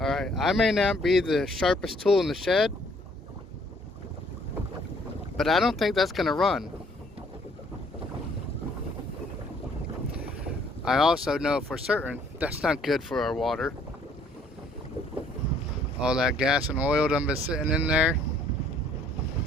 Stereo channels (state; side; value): normal; both; correlation 0.62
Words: Alright, I may not be the sharpest tool in the shed, but I don't think that's going to run. I also know for certain that's not good for our water. All that gas and oil done been sitting in there.